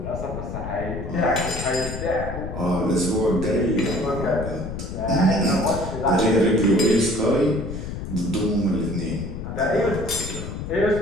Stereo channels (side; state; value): left; noise; rumble, 7 dB below the sound